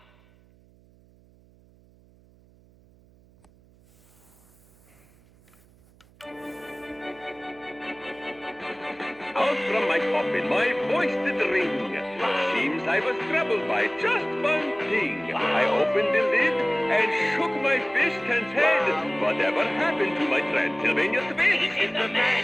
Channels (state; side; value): noise; right; hum, 29 dB below the sound